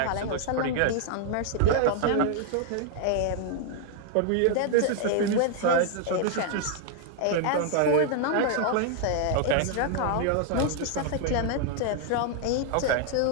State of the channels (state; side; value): different; both; correlation 0.00